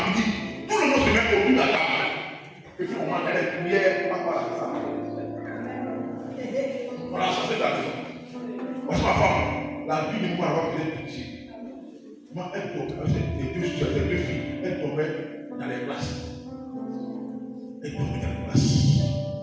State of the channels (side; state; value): both; identical; correlation 1.00